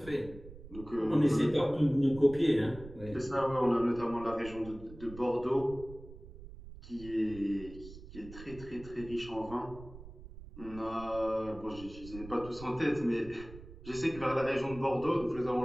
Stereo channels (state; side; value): noise; right; rumble, 16 dB below the sound